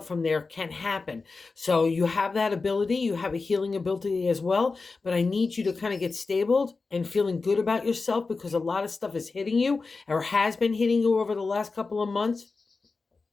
from there can happen. So you have that ability, you have a healing ability as well, but I need you to kind of get stable and feeling good about yourself, because a lot of stuff is hitting you or has been hitting you over the last couple of months.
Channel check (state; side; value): quieter; right; 4.1 dB